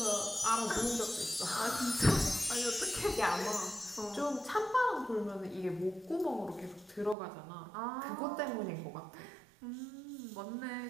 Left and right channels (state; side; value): drops out; left; at 7.2 s